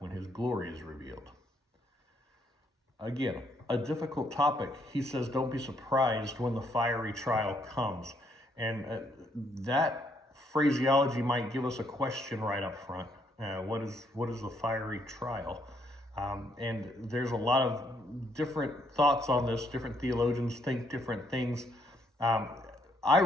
his glory is revealed." Again, a difficult topic. He says, don't be surprised when the fiery trial comes. And that phraseology might give us a question right up front. What is the fiery trial? And there's a lot of different thoughts on this. Different theologians think different things. I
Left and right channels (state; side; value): normal; both; correlation 0.71